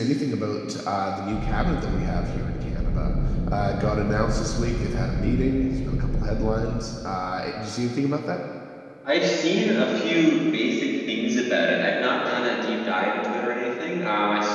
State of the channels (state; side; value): identical; both; correlation 1.00